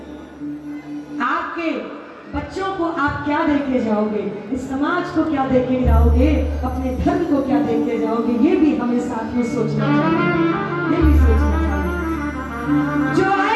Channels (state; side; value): identical; both; correlation 1.00